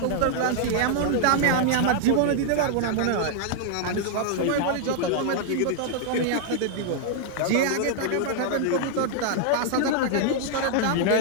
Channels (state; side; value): different; both; correlation 0.00